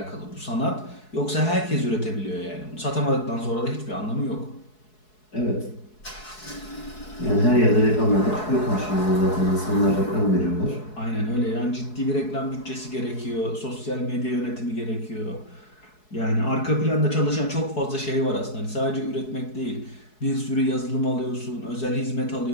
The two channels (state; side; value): late; right; 4.7 ms